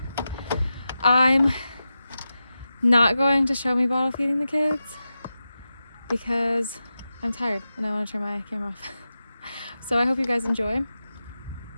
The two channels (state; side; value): inverted; both; correlation -0.91